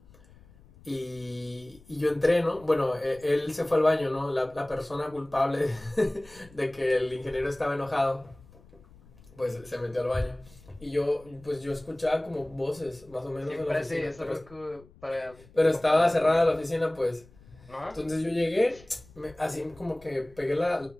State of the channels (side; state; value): left; noise; rumble, 25 dB below the sound